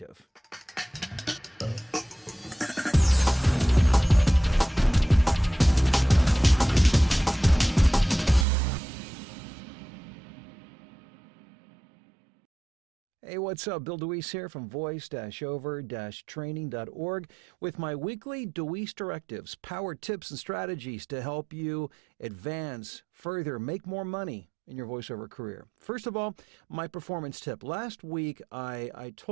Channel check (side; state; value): left; drops out; at 8.5 s